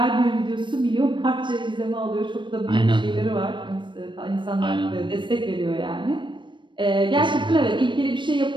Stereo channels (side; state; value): left; late; 0.23 ms